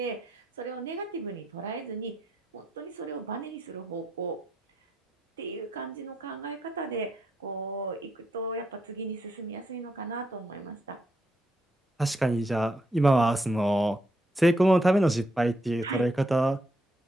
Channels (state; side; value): normal; both; correlation 0.79